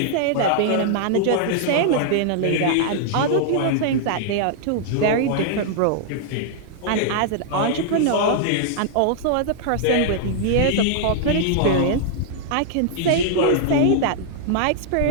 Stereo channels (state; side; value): different; both; correlation -0.01